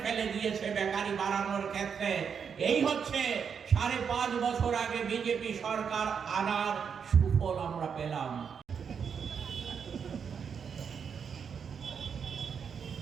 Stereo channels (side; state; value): left; quieter; 6.8 dB